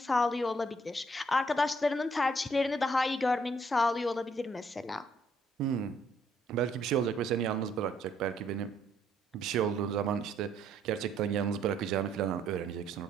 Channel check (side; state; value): both; normal; correlation 0.67